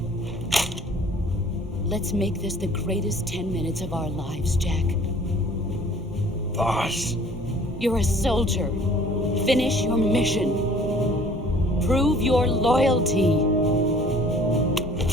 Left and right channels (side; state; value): both; normal; correlation 0.52